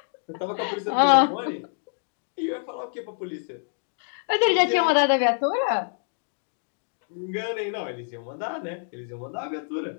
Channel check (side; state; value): right; silent; digital silence